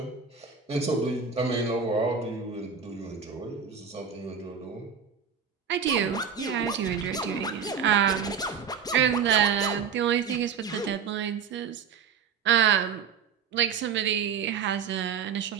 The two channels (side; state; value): left; quieter; 6.8 dB